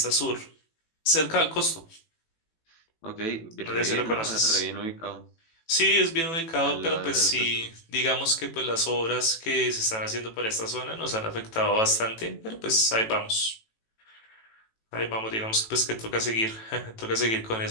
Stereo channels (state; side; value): late; right; 18 ms